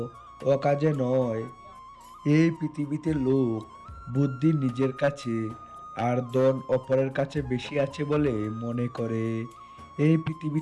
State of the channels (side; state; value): both; identical; correlation 1.00